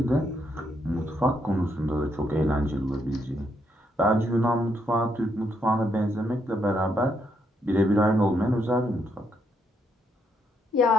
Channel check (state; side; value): normal; both; correlation 0.76